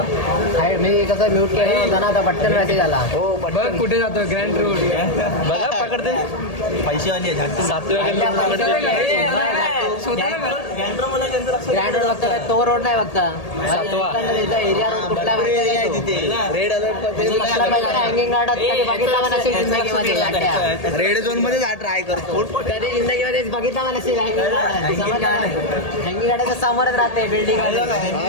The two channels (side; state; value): right; late; 1.8 ms